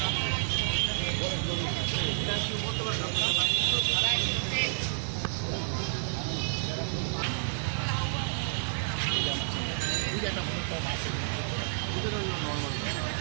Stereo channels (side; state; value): left; silent; digital silence